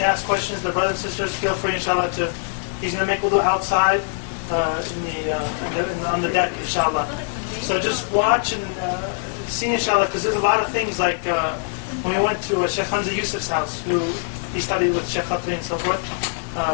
ask questions. The brothers and sisters, feel free, inshallah, he's going to make wudu outside on the deck, inshallah. So just watch and see, inshallah, because there's a lot of things like when we went to Shaykh Hamza Yusuf's house, who he studied with Shaykh Khatri and so forth.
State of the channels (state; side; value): silent; right; digital silence